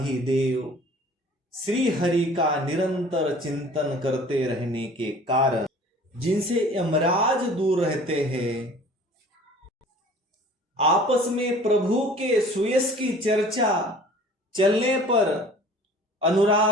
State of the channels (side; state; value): both; normal; correlation 0.48